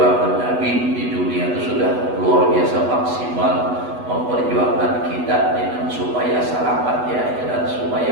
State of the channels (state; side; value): late; left; 8.1 ms